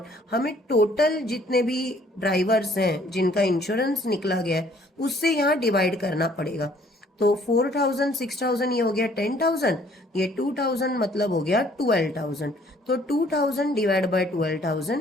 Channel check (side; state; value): both; normal; correlation 0.60